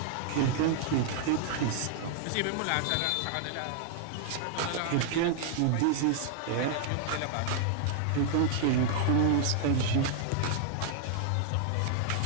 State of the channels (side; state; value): both; different; correlation 0.00